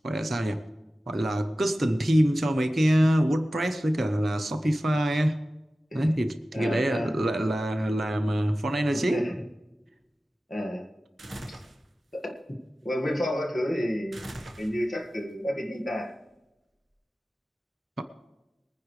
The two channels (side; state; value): both; normal; correlation 0.95